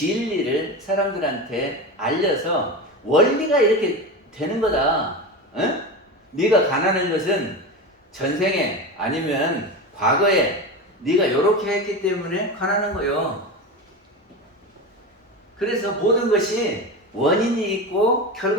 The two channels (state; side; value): normal; both; correlation 0.24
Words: 사람들한테 알려서 원리가 이렇게 되는 거다. 어? 네가 가난한 것은 전생에 아니면 과거에 네가 이렇게 했기 때문에 가난한 거요. 그래서 모든 것이 원인이 있고